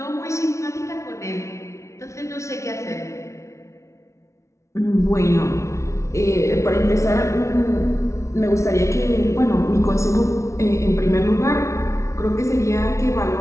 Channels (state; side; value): late; right; 0.14 ms